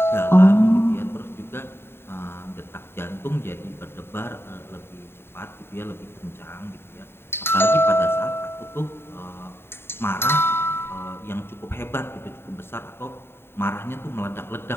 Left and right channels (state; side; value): late; right; 0.11 ms